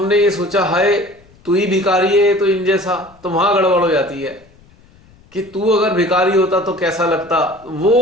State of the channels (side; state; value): left; noise; rumble, 28 dB below the sound